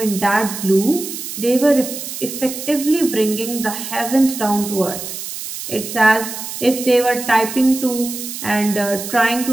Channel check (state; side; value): noise; right; hiss, 8 dB below the sound